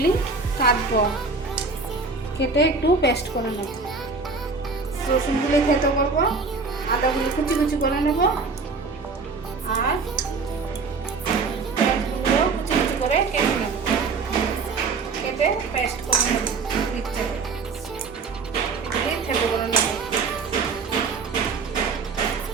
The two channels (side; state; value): left; quieter; 4.5 dB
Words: কাটবো, কেটে একটু পেস্ট করে নেব। রসুনগুলি থেতো করবো, আদাগুলি কুচি কুচি করে নেব, আর পেঁয়াজগুলো কুচি কুচি করে কেটে নেব, কেটে পেস্ট করে নেব। মিক্সচারে এগুলি থেতো করে নেব।